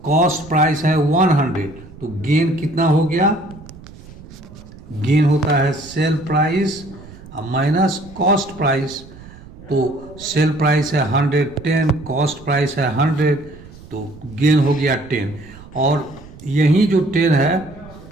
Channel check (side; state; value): right; noise; rumble, 19 dB below the sound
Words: कॉस्ट प्राइस है 100, तो गेन कितना हो गया, गेन होता है sale price minus cost price. तो सेल प्राइस है 110, कॉस्ट प्राइस है 100, तो गेन हो गया 10, और यही जो 10 है